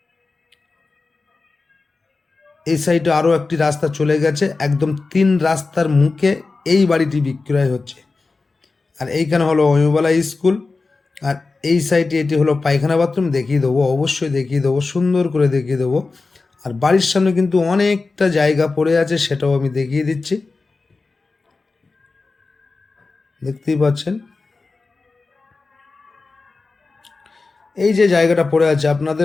এই সাইডে আরও একটি রাস্তা চলে গেছে, একদম 3 রাস্তার মুখে এই বাড়িটি বিক্রয় হচ্ছে। আর এইখানে হলো অমিয়বালা স্কুল, আর এই সাইডে এটি হলো পায়খানা বাথরুম। দেখিয়ে দেবো, অবশ্যই দেখিয়ে দেবো, সুন্দর করে দেখিয়ে দেবো। আর বাড়ির সামনে কিন্তু অনেকটা জায়গা পড়ে আছে, সেটাও আমি দেখিয়ে দিচ্ছি। দেখতেই পাচ্ছেন এই যে জায়গাটা পড়ে আছে,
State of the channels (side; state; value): right; quieter; 3.9 dB